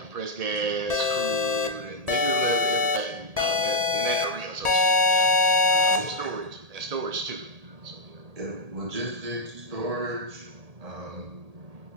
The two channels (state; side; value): late; left; 1.8 ms